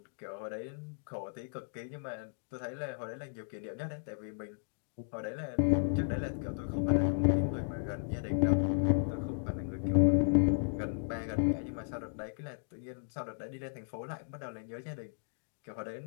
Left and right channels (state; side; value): silent; right; digital silence